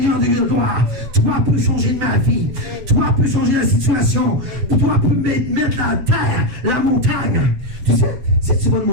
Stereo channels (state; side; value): late; left; 8.0 ms